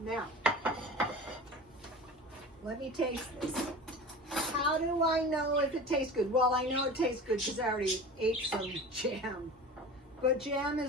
let me taste this. How do I know if it tastes good? Well, I know it tastes good because I already ate some jam. But jam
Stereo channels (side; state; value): both; normal; correlation 0.35